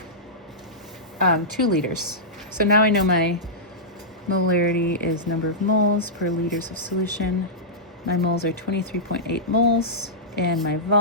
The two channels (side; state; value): both; normal; correlation -0.13